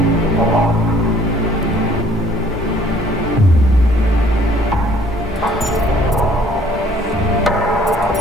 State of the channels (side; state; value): both; normal; correlation 0.58